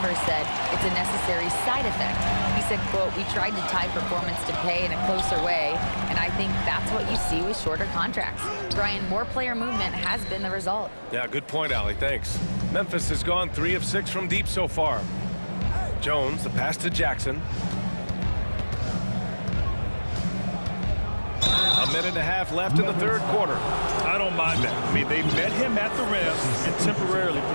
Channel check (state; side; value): inverted; both; correlation -1.00